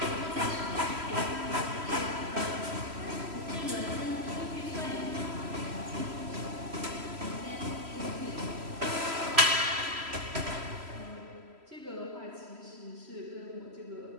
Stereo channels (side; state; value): left; late; 3.0 ms